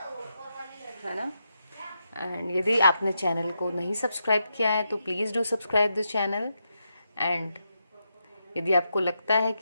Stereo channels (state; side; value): inverted; both; correlation -0.84